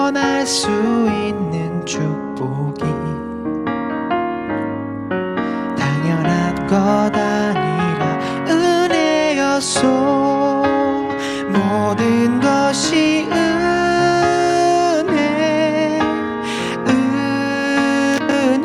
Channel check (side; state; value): both; identical; correlation 1.00